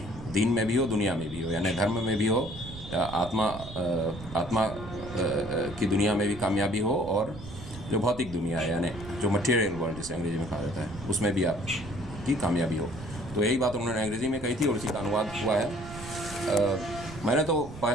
दीन में भी हो, दुनिया में भी हो, यानी धर्म में भी हो, आत्मा की दुनिया में भी कामयाबी हो, और जो भौतिक दुनिया है यानी जो मटेरियल वर्ल्ड जिसे अंग्रेज़ी में कहा जाता है, उसमें भी आपकी कामयाबी हो। तो यही बात उन्होंने अंग्रेज़ी में कही थी और इसी का अनुवाद हुआ है। मैंने तो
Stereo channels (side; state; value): right; noise; rumble, 13 dB below the sound